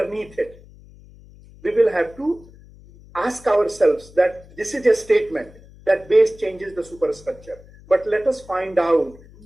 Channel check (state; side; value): noise; left; hum, 23 dB below the sound